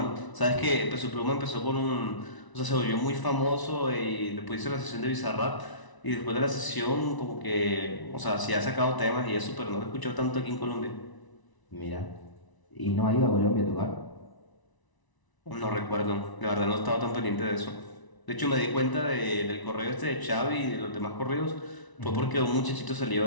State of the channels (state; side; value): late; right; 1.0 ms